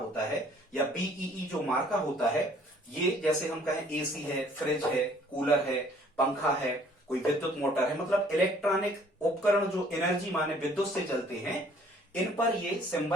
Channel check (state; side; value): normal; both; correlation 0.58